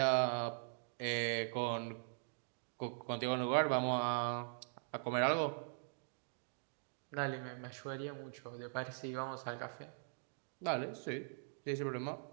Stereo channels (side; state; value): left; silent; digital silence